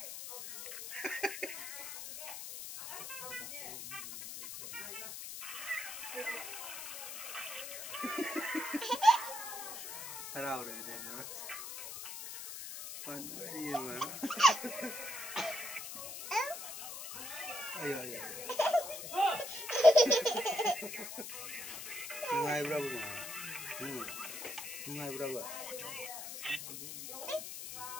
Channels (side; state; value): left; noise; hiss, 8 dB below the sound